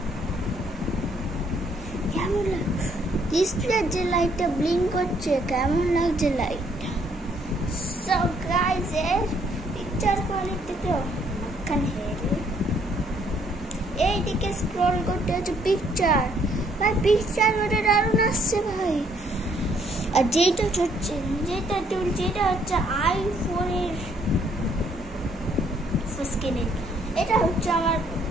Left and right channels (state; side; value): normal; both; correlation 0.67